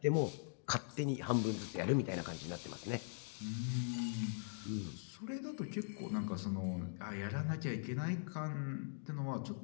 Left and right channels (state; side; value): silent; right; digital silence